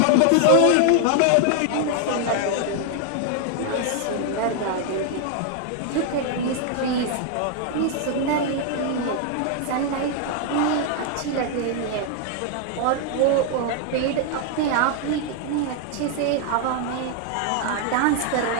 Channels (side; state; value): both; different; correlation 0.00